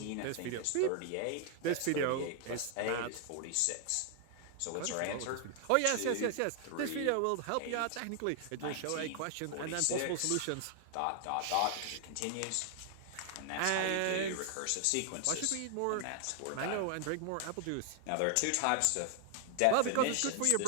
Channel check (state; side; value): different; both; correlation 0.00